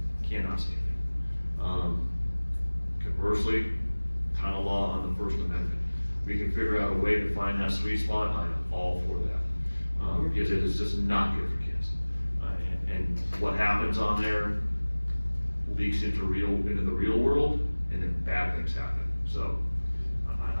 Cannot stand it. Conversely, kind of law on the First Amendment. We can figure out a way to find that sweet spot. I am all for that, because it is just not good for kids. And what happens on there leaks into the real world, and then bad things happen. So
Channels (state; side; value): inverted; both; correlation -1.00